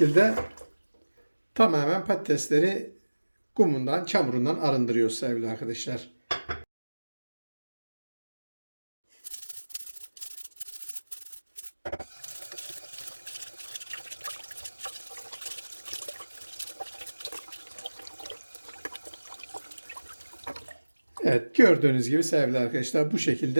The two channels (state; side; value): inverted; both; correlation -1.00